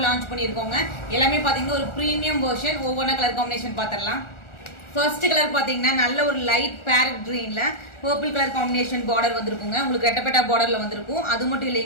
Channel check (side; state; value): right; late; 1.4 ms